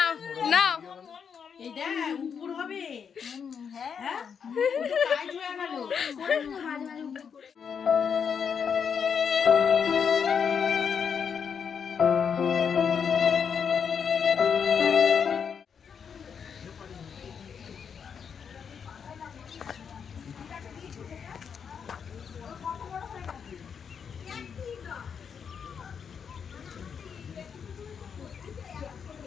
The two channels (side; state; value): right; quieter; 6.9 dB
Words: না এই দেখ উপর হবে। হ্যাঁ কাজ হয়ে গেল।